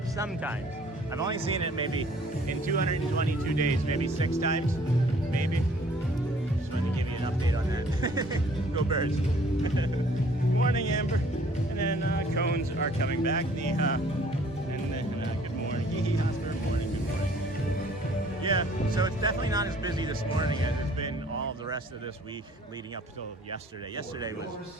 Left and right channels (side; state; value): both; normal; correlation 0.56